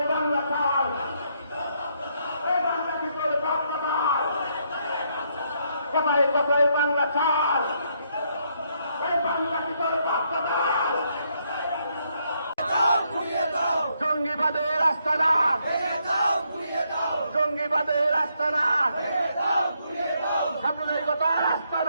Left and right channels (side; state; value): both; inverted; correlation -0.75